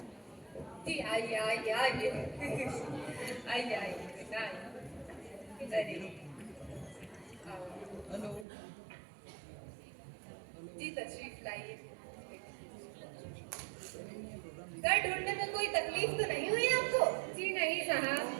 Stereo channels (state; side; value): drops out; left; at 8.5 s